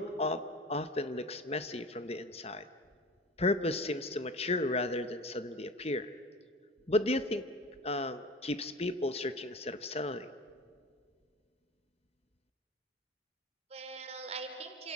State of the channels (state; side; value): normal; both; correlation 0.36